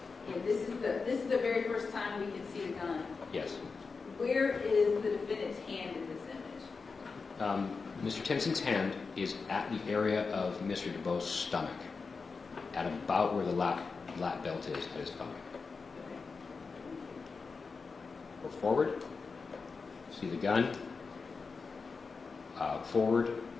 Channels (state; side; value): quieter; right; 4.7 dB